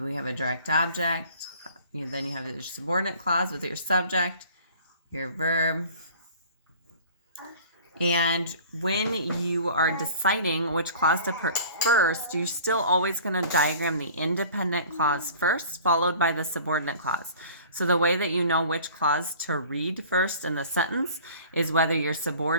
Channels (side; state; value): both; inverted; correlation -0.46